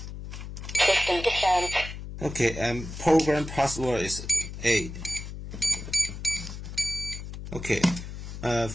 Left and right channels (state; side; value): noise; left; hum, 9 dB below the sound